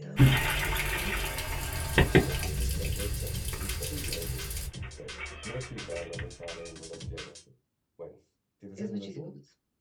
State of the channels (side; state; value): both; identical; correlation 1.00